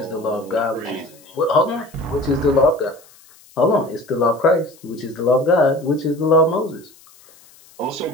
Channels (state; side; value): noise; left; hiss, 26 dB below the sound